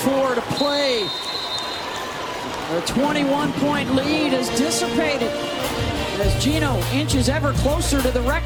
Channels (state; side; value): identical; both; correlation 1.00